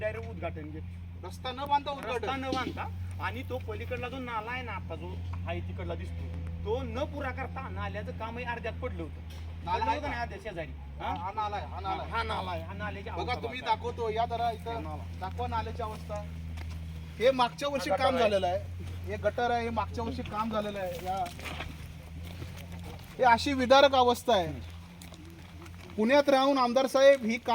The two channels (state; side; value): identical; both; correlation 1.00